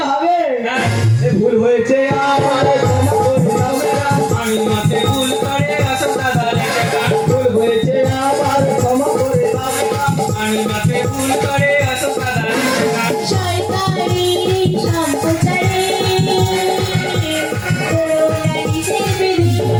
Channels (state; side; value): identical; both; correlation 1.00